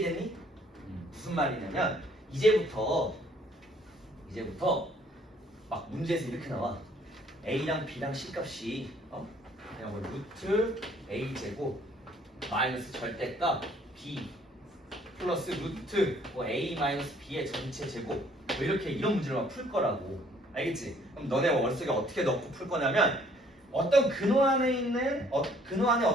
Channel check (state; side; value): normal; both; correlation 0.61